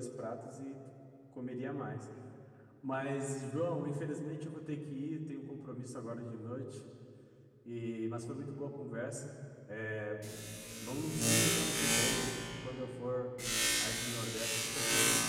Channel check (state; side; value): identical; both; correlation 1.00